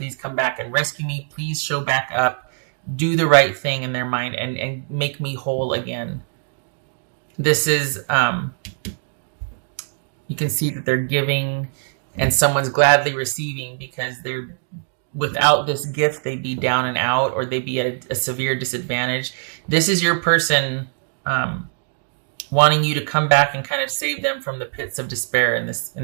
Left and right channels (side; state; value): left; silent; digital silence